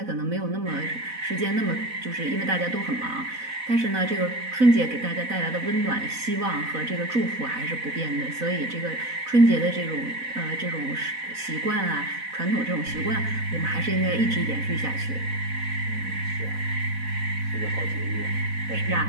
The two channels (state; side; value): late; left; 4.0 ms